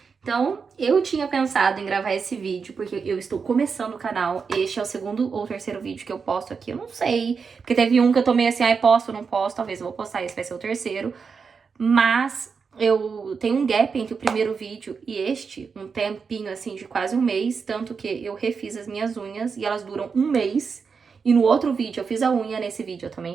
Então, eu tinha pensado em gravar esse vídeo, porque eu estou começando o canal. Este é o segundo ou terceiro vídeo que eu posto aqui, eu não sei. Porque teve um que eu tomei assim, ai, posto ou não posto, talvez eu vou postar, esse vai ser o terceiro. Mas eu tenho um gap entre o primeiro vídeo e este, um tempinho assim de quase um mês, tanto que eu refiz as minhas unhas e elas duram um mês. E no outro vídeo eu fiz a unha, nesse vídeo eu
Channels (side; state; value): left; quieter; 5.5 dB